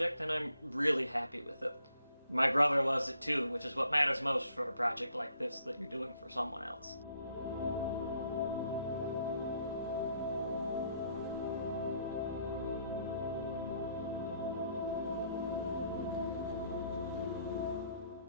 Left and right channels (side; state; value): both; inverted; correlation -0.69